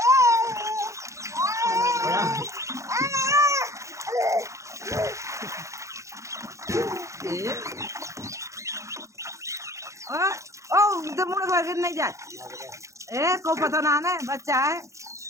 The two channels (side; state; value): left; late; 0.15 ms